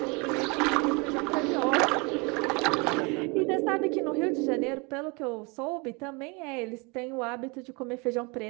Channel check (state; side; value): quieter; left; 29.9 dB